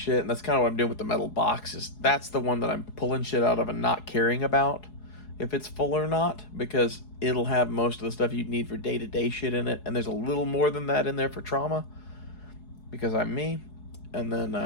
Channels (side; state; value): right; late; 4.8 ms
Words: and that's kind of what I'm doing with the metal boxes, that's the one that I'm pulling shit out of and not caring about if it's full or not, because it'll have most of the stuff you need for day-to-day shit in it, and there's a little more than that in there for trauma, because I'm me. And then